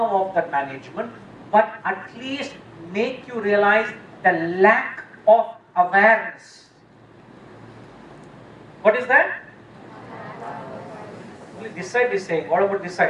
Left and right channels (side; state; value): both; identical; correlation 1.00